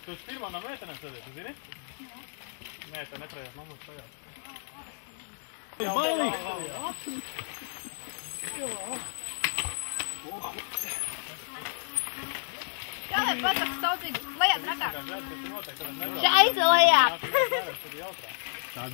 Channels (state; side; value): silent; right; 57 dB below the other